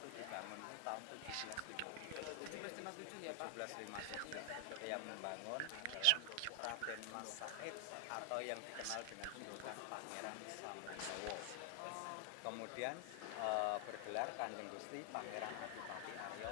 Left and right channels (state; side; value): different; both; correlation 0.00